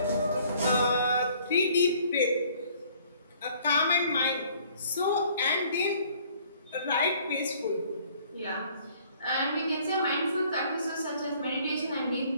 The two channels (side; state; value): both; inverted; correlation -0.58